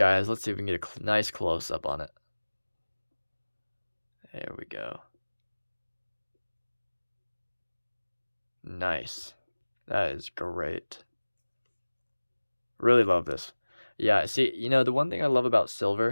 Let's see if we can get a nice close-up on it. There we go. Nice. That is great. Really love this. Yeah, see, the one thing I love about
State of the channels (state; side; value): inverted; both; correlation -1.00